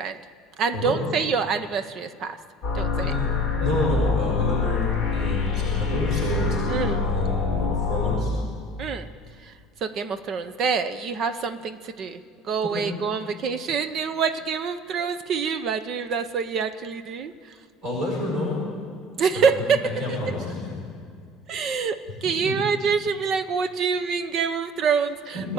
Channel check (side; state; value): both; normal; correlation 0.44